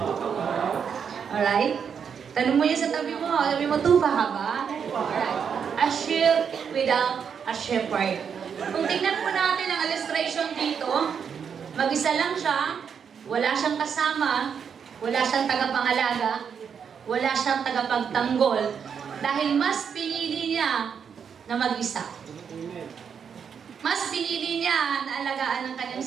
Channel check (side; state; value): left; quieter; 7.1 dB